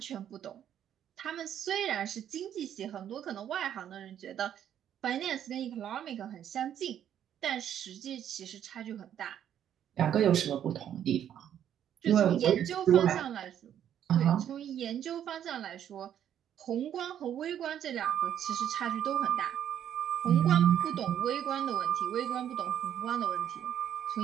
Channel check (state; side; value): quieter; left; 10.0 dB